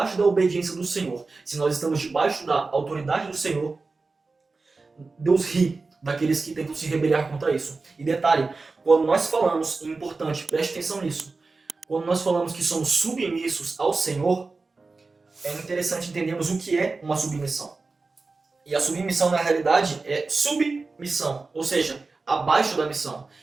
da obediência do Senhor, se nós estamos debaixo da autoridade do Senhor, Deus ri daqueles que tentam se rebeliar contra isso. E detalhe, quando nós falamos, é importante, preste atenção nisso, quando nós falamos que somos submissos ao Senhor, é interessante entendermos o que é uma submissão. E a submissão, na realidade, é submissão, ou seja, abaixo da missão.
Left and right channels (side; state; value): left; quieter; 3.9 dB